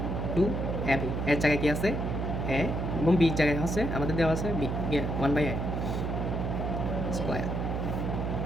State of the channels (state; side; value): noise; right; hum, 1 dB below the sound